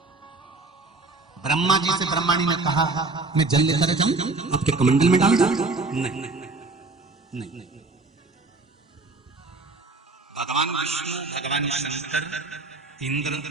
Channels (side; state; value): left; quieter; 3.5 dB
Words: ब्रह्मा जी से ब्रह्माणी ने कहा मैं जल लेकर जाऊं, आपके कमंडल में डाल दूं? नहीं नहीं। भगवान विष्णु, भगवान शंकर, इंद्र